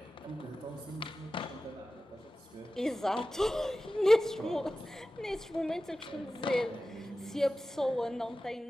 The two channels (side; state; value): both; normal; correlation 0.95